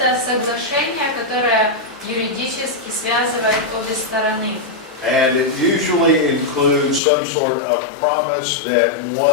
соглашение, которое юридически связывает обе стороны. And it usually includes some sort of promise that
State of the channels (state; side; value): drops out; right; at 7.0 s